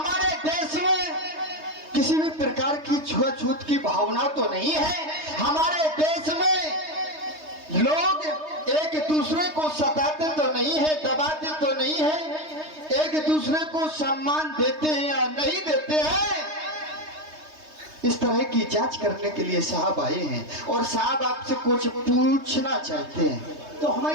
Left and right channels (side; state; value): left; late; 3.2 ms